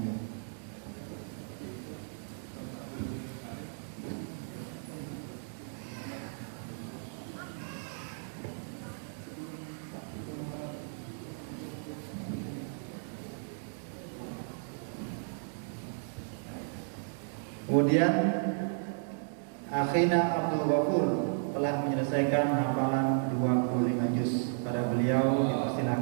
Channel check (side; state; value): left; silent; digital silence